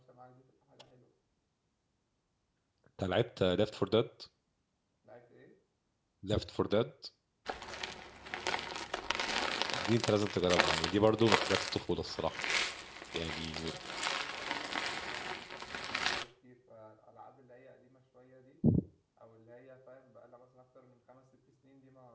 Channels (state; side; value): identical; both; correlation 1.00